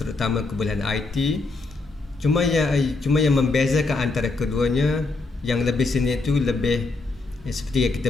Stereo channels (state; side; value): quieter; right; 3.5 dB